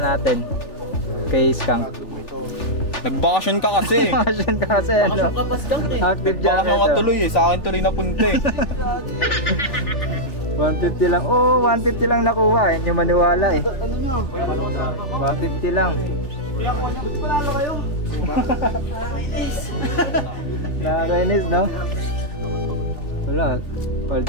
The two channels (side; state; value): right; late; 3.4 ms